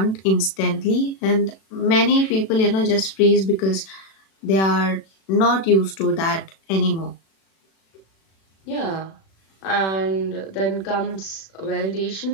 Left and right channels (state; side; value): late; right; 36 ms